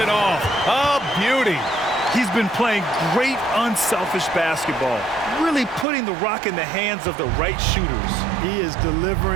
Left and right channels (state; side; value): drops out; left; at 5.9 s